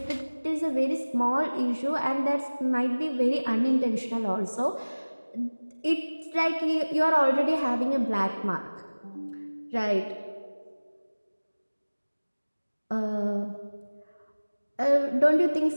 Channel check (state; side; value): inverted; both; correlation -1.00